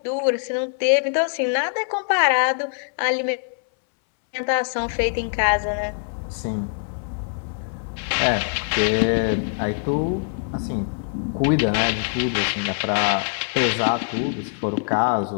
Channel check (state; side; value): silent; right; 61 dB below the other